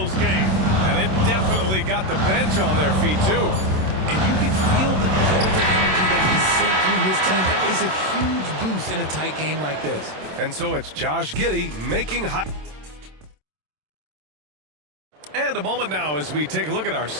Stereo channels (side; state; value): left; late; 27 ms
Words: game. And it definitely got the bench on their feet, too. And you can feel the jolt of energy that he sent through his team. That is a huge boost in a tight game like this. And so it's Josh Giddey making high. And a moment now as we take a look at our